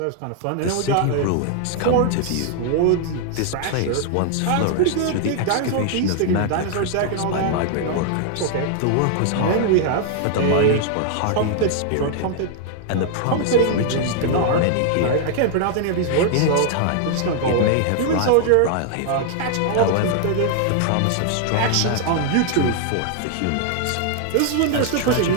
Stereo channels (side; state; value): both; different; correlation 0.00